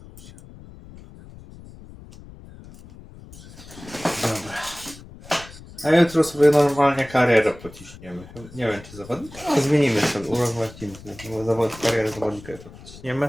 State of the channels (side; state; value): left; noise; rumble, 18 dB below the sound